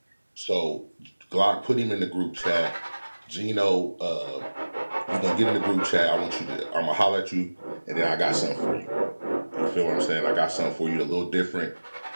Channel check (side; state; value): both; inverted; correlation -1.00